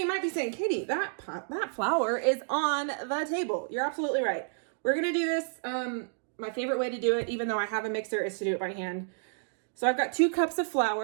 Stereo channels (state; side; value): silent; left; digital silence